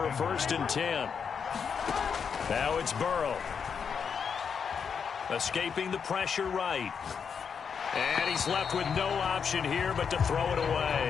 a 1st and 10. Now it's Burrow. Escaping the pressure right. And he's left with no option here but to throw it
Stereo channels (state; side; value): quieter; right; 6.6 dB